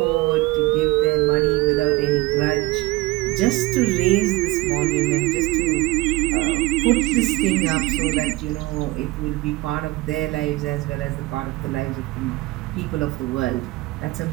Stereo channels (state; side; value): quieter; left; 20.3 dB